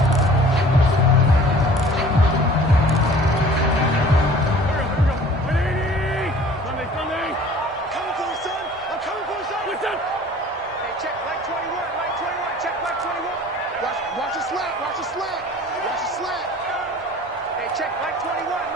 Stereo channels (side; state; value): both; normal; correlation 0.48